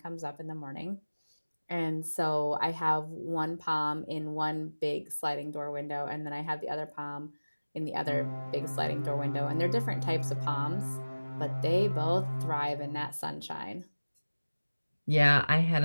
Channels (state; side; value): inverted; both; correlation -1.00